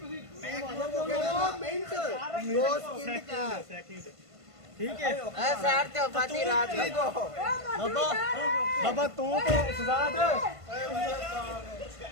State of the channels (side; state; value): left; late; 1.5 ms